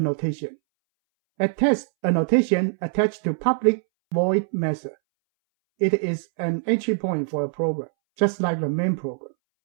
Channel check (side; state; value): left; silent; 62 dB below the other